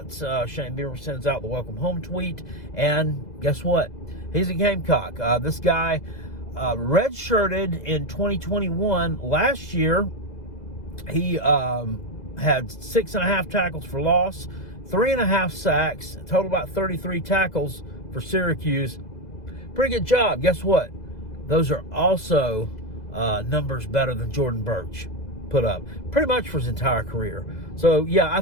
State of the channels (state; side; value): late; right; 2.0 ms